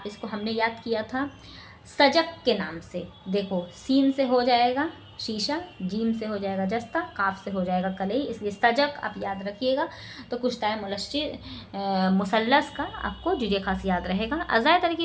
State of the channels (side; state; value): both; identical; correlation 1.00